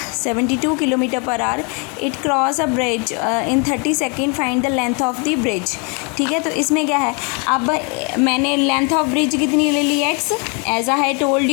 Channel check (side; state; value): right; quieter; 34.6 dB